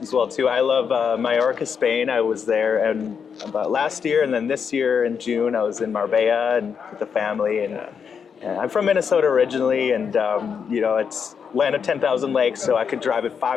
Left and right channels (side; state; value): right; quieter; 6.7 dB